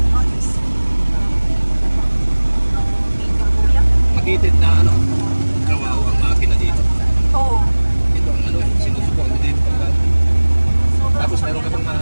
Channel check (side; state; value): both; inverted; correlation -1.00